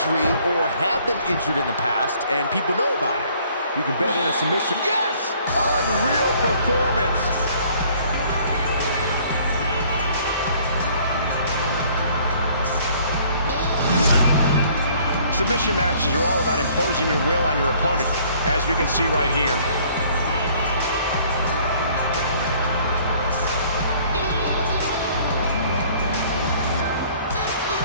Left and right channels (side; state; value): both; inverted; correlation -0.58